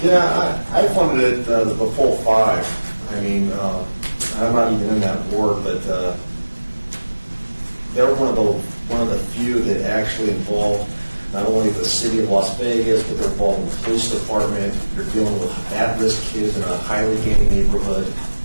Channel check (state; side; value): inverted; both; correlation -1.00